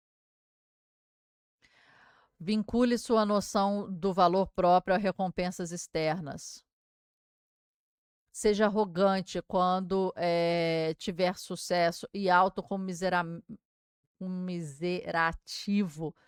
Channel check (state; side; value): identical; both; correlation 1.00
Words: Vincule sua noção do valor próprio a recompensas externas. Seja arrogante quando tiver sucesso e autocomiserativo